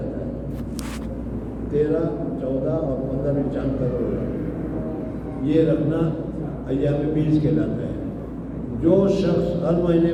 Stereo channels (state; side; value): identical; both; correlation 1.00